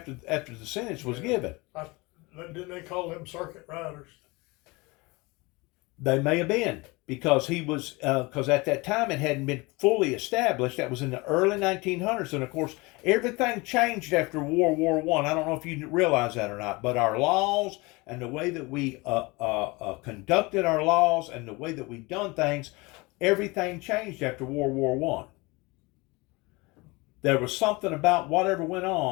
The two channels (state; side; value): quieter; right; 24.7 dB